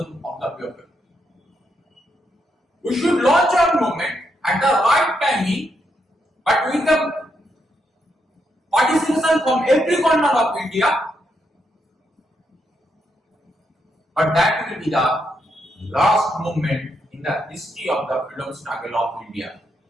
of the people. We should launch our movement at the right timing, but with the participation from every corner of India. But that will be the last movement in the history of the freedom struggle of India.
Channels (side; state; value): both; normal; correlation 0.80